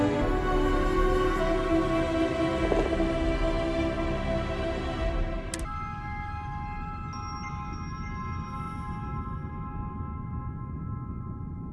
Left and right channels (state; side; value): identical; both; correlation 1.00